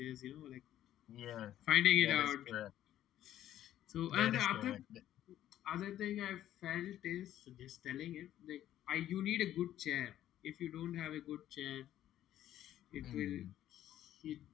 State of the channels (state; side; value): quieter; right; 12.2 dB